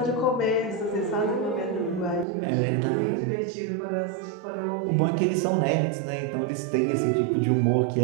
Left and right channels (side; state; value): left; drops out; at 2.2 s